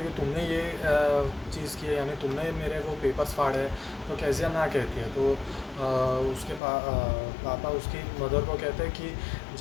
हैं कि तुमने ये चीज़ की है, यानी तुमने मेरे वो पेपर्स फाड़े। तो कैसिया ना कहती है। तो उसके पापा उसकी मदर को कहते हैं कि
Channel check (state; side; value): drops out; right; at 6.6 s